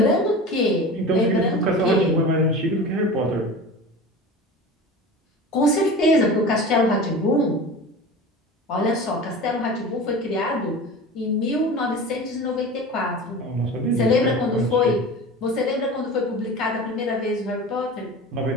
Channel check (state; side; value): normal; both; correlation 0.34